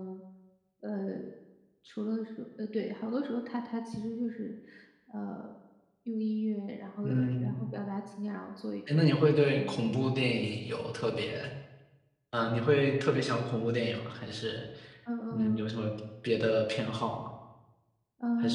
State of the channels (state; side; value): identical; both; correlation 1.00